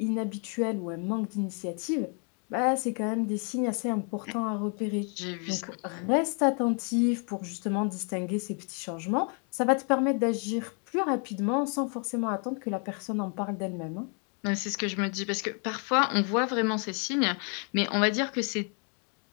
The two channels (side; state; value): right; quieter; 39.4 dB